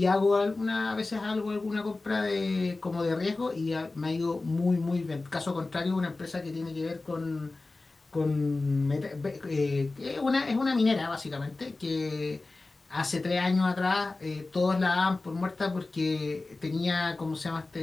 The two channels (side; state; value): right; quieter; 3.3 dB